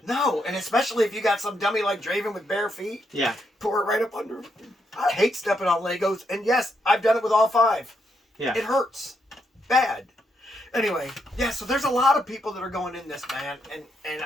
No, and especially if you got some dummy like Draven with bare feet. Yeah. Pour it right up under. I hate stepping on Legos, and yes, I've done it with all 5. Yeah. It hurts. Bad. Anyway, yeah, so there's a lot of people that are going in this, man, and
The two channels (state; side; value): normal; both; correlation 0.79